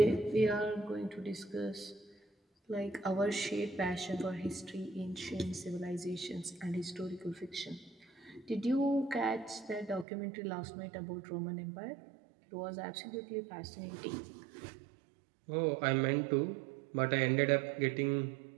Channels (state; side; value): drops out; left; at 10.1 s